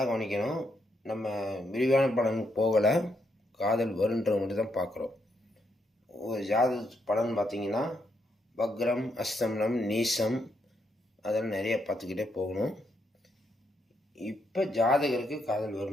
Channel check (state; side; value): normal; both; correlation 0.77